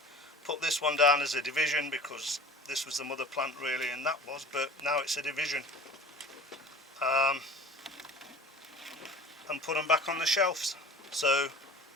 Put this one down as a division because this was the mother plant really, and that was, but now it's a division. And put them back on the shelves. So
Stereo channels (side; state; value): both; normal; correlation 0.41